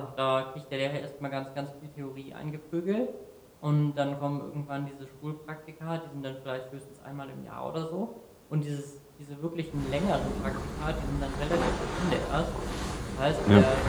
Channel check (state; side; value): identical; both; correlation 1.00